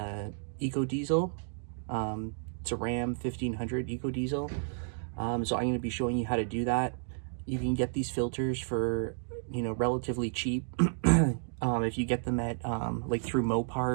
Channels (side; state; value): left; silent; digital silence